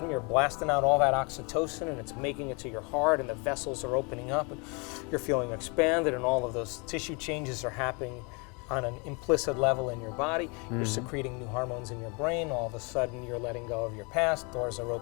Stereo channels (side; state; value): right; quieter; 31.9 dB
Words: you're blasting out all that oxytocin and it's making it to your heart and the vessels are opening up and you're feeling expanded and all of those tissue changes are happening on an implicit level in your body. You're secreting new hormones in your brain. All of a sudden you're letting go of your past. Doors are